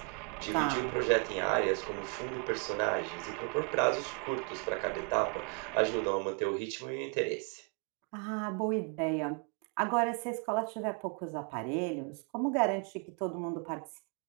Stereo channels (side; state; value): left; quieter; 37.8 dB